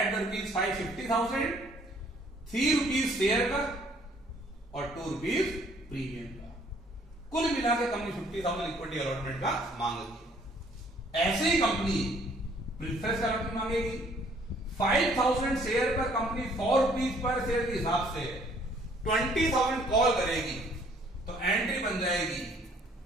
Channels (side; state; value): both; normal; correlation 0.61